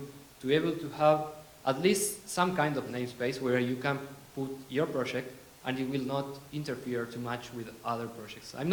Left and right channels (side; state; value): both; identical; correlation 1.00